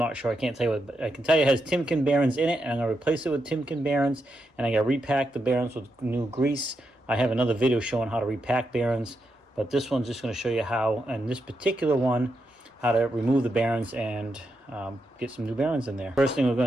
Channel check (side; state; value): both; normal; correlation 0.84